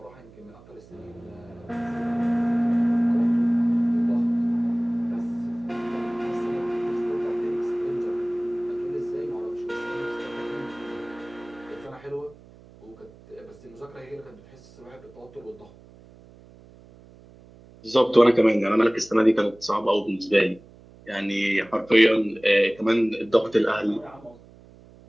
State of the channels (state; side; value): noise; right; hum, 23 dB below the sound